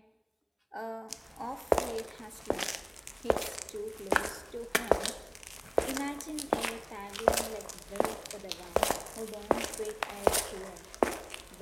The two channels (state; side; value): identical; both; correlation 1.00